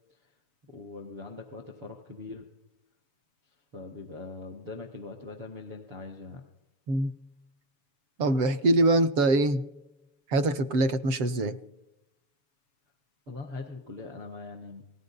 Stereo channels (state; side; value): late; left; 7.1 ms